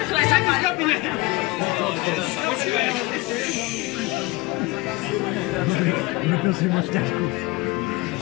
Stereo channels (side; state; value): right; quieter; 21.2 dB